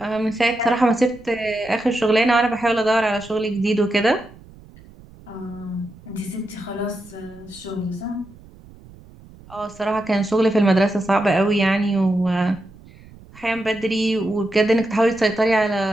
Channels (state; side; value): noise; right; rumble, 22 dB below the sound